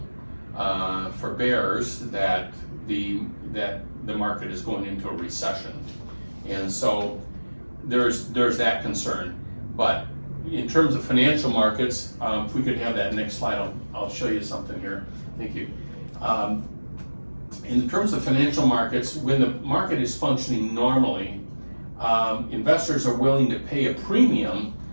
for bears that the market is going into a recession, and so there's that concern. But in terms of financial markets, if we could have that next slide, I'll show you something here. Thank you. In terms of financial markets, when the market is functioning normally, investors are willing to pay a premium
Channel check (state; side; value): inverted; both; correlation -1.00